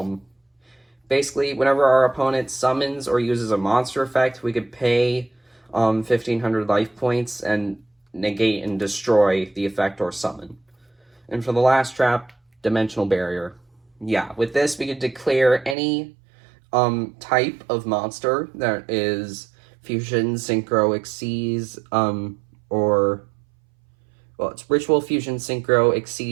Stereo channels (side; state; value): left; drops out; at 15.8 s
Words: Basically, whenever our opponent summons or uses a monster effect, we could pay 1,500 life points and negate and destroy the effect or summon. And for the last trap, Dimensional Barrier. Yeah, with this, we could declare any type of monster that is Fusion, Synchro, Xyz, or... well, it's Ritual, Fusion, Synchro,